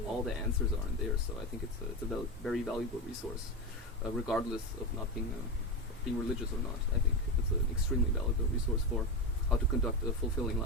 all the answers are in there. So I think it's a very valuable resource, regardless of not being religious or not. I think it's an extremely valuable resource for how to conduct a fulfilling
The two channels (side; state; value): both; normal; correlation 0.17